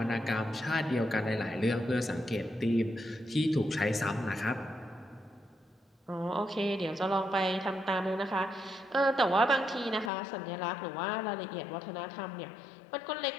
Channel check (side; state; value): right; drops out; at 10.1 s